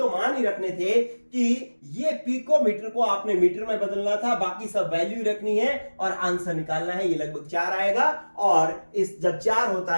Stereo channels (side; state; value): both; inverted; correlation -1.00